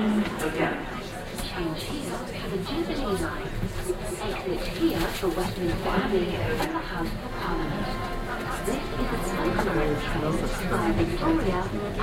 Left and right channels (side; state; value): both; identical; correlation 1.00